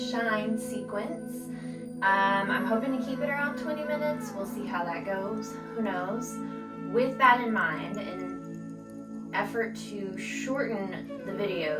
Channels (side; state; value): both; identical; correlation 1.00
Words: sequence. I'm hoping to keep it around 20 minutes. We'll see how that goes. Who knows? With that in mind, in effort to shorten the